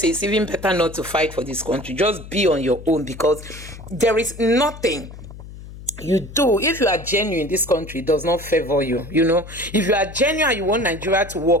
it's even better not to fight for this country. Just be on your own because there is nothing you do. If you are genuine, this country does not favor you. If you are genuine and you want Nigeria to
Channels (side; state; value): left; noise; hum, 14 dB below the sound